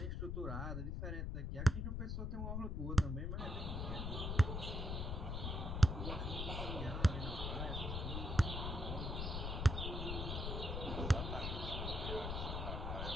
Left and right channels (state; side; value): noise; left; rumble, 2 dB below the sound